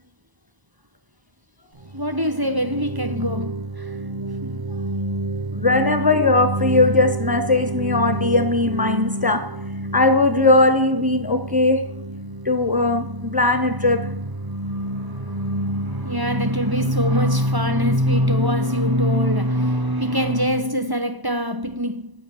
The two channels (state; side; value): late; left; 1.0 ms